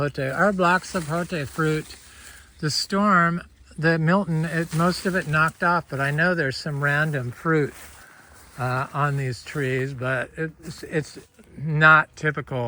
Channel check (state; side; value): identical; both; correlation 1.00